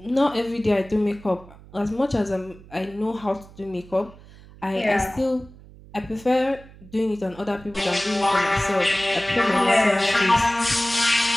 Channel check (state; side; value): noise; right; hum, 21 dB below the sound